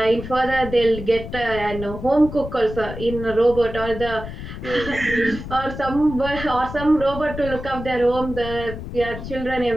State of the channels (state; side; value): noise; left; rumble, 10 dB below the sound